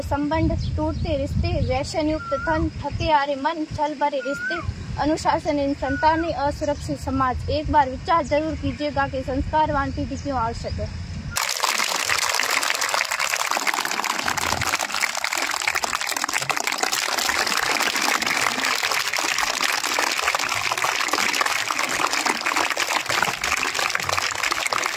संबंध, टूटते रिश्ते, व्यसन युक्त धन, थके हारे मन, छल भरे रिश्ते, अनुशासनहीन संतानें, असुरक्षित समाज। एक बार विचार जरूर कीजिएगा कि संस्कारवान पीढ़ी क्यों आवश्यक है।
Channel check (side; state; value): both; identical; correlation 1.00